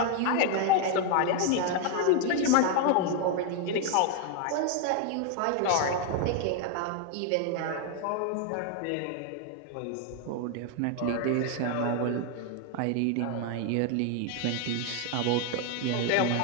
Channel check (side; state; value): both; different; correlation 0.01